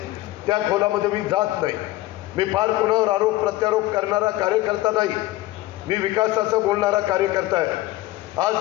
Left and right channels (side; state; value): right; quieter; 17.2 dB